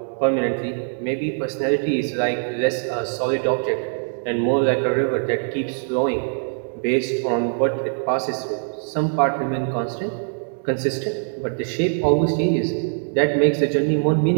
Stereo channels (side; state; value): left; silent; 62 dB below the other